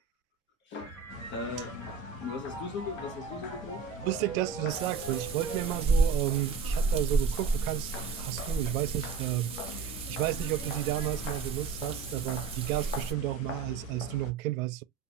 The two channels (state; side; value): quieter; left; 5.9 dB